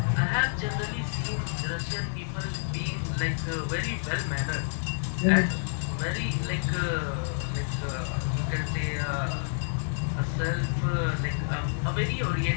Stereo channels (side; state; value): right; silent; digital silence